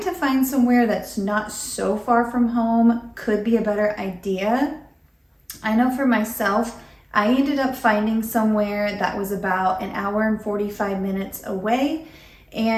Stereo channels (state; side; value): identical; both; correlation 1.00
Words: to find somewhere that's not so far from home could be a better idea. I know for myself, I ended up finding somewhere that was about an hour and 45 minutes away,